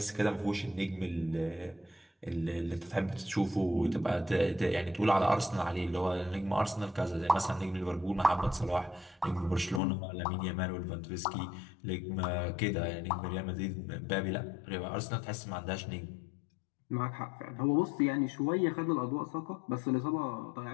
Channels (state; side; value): drops out; right; at 9.8 s